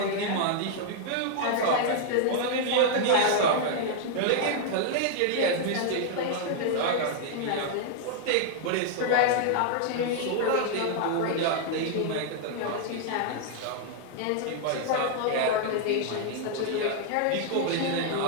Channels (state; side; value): different; both; correlation 0.00